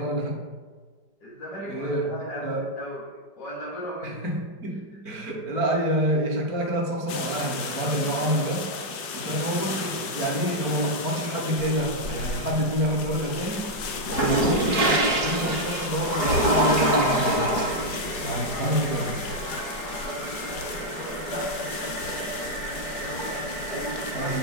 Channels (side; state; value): right; late; 5.0 ms